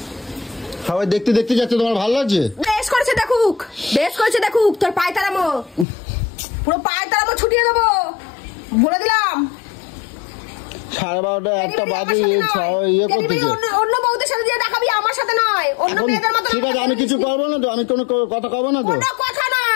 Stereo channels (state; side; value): drops out; right; at 5.9 s